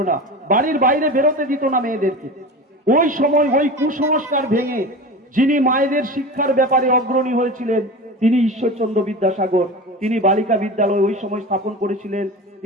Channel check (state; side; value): normal; both; correlation 0.30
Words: না, বাড়ির বাইরে বেরোতে দিত না মেয়েদেরকে। ওই সময় ওই কুসংস্কার ভেঙে যিনি মায়েদের শিক্ষার ব্যাপারে অগ্রণী হয়েছিলেন তিনি ঈশ্বরচন্দ্র বিদ্যাসাগর। তিনি বালিকা বিদ্যালয় ওই সময় স্থাপন করেছিলেন,